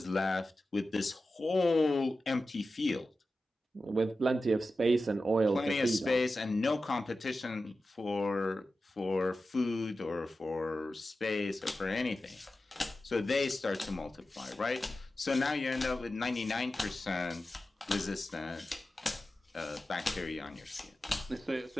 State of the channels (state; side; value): normal; both; correlation 0.93